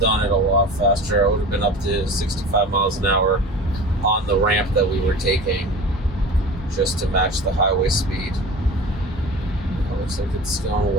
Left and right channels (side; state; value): both; normal; correlation 0.36